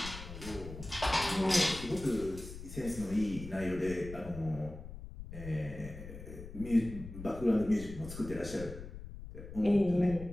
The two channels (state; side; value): noise; left; rumble, 11 dB below the sound